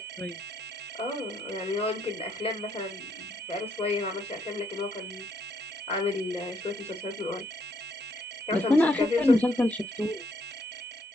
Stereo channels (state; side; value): normal; both; correlation 0.72